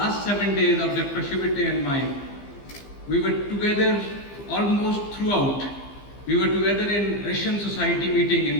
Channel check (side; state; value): right; late; 15 ms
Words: 7 days of Dr. Chivate and mine, we were together almost throughout. We were together in Russian Society meeting